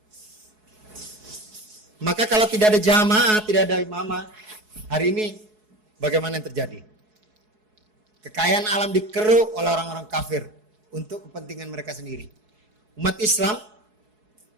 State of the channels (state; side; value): late; left; 4.7 ms